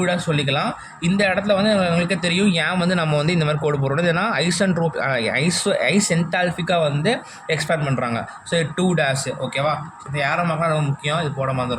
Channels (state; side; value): identical; both; correlation 1.00